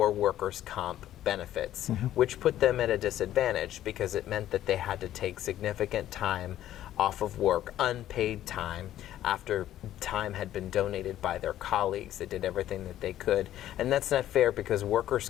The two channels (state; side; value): quieter; right; 12.6 dB